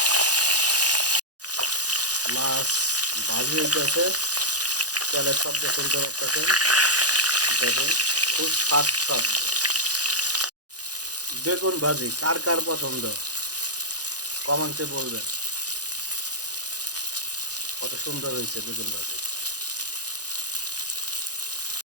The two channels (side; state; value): left; late; 0.68 ms